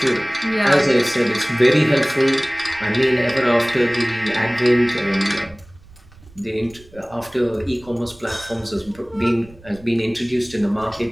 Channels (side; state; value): right; noise; rumble, 24 dB below the sound